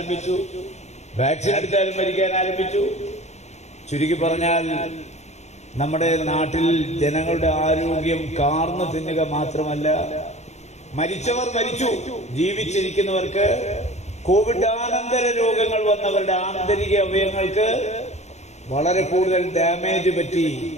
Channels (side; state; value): right; late; 0.32 ms